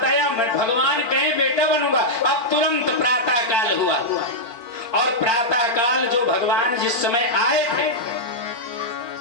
आया, भगवान कहे बेटा बनूंगा। अब तुरंत प्रातः काल हुआ और प्रातः काल जो भगवान जिस समय आए थे,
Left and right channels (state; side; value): late; left; 4.5 ms